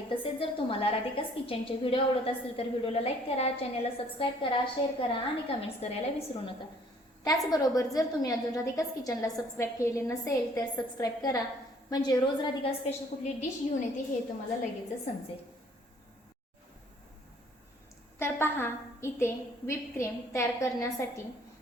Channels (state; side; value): normal; both; correlation 0.59